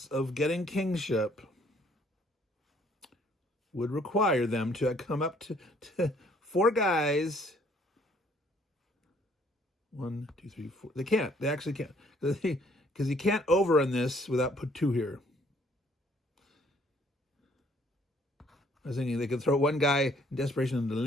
of getting kingship would require them to come up to four guys. 1, 2, 3, 4. They can't. They actually can't. Because you can't overrun this without put two here. I was thinking they could throw one guy in desperation into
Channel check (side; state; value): both; normal; correlation 0.63